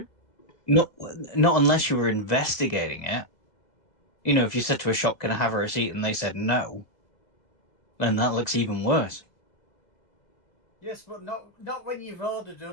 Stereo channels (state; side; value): late; right; 2.0 ms